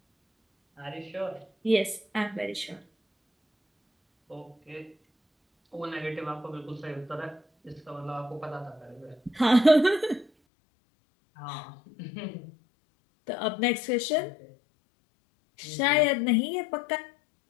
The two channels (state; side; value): drops out; right; at 10.3 s